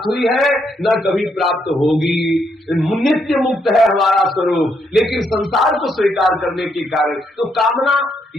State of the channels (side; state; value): both; normal; correlation 0.76